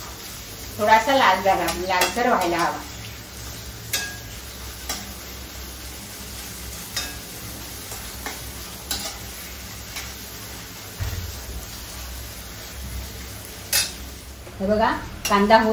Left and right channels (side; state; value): both; identical; correlation 1.00